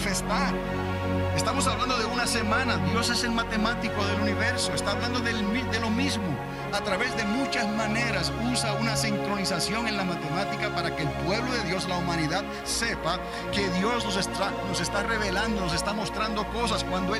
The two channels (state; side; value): identical; both; correlation 1.00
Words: Estamos hablando de una semana. Dios es el matemático del universo. Está hablando de lo mismo. A través de muchas maneras usa una sincronización en la matemática para que el pueblo de Dios, la humanidad, sepa que Dios nos está revelando, nos está mostrando cosas. Cuando